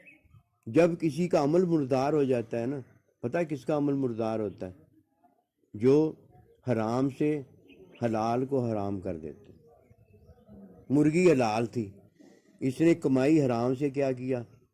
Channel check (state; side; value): identical; both; correlation 1.00